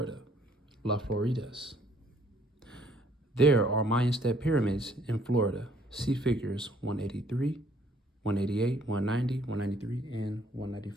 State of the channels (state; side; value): normal; both; correlation 0.63